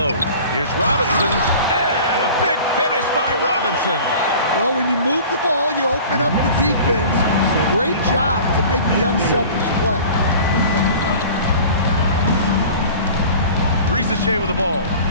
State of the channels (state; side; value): inverted; both; correlation -0.42